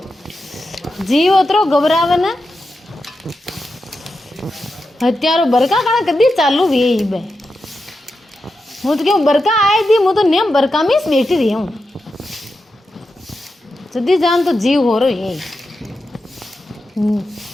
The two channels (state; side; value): normal; both; correlation 0.89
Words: जीव ओतरो घबरावे ने हत्यारो बरका कण कदी चालू वे बे हूँ तो क्यों बरका आए थी मैं तो नेम बरका में बैठी रही हूँ जदी जान तो जीव हो रही है।